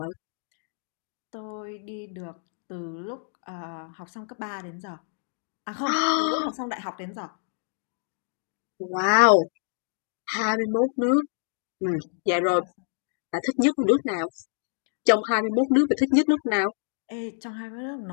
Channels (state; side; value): silent; right; digital silence